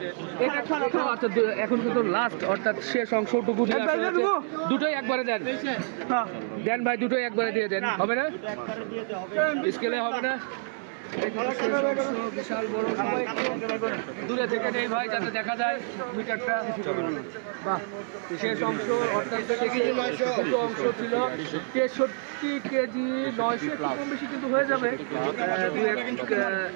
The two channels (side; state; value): left; silent; 60 dB below the other